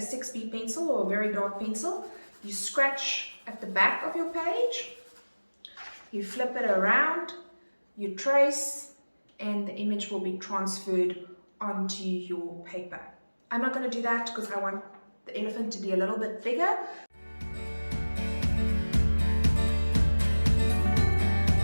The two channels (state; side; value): inverted; both; correlation -1.00